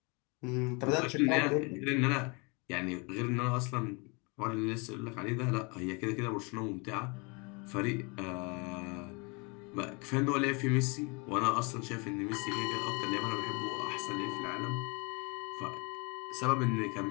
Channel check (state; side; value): quieter; right; 30.6 dB